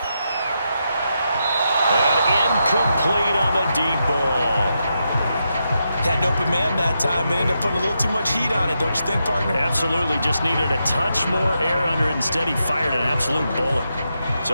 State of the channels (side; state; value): both; inverted; correlation -0.84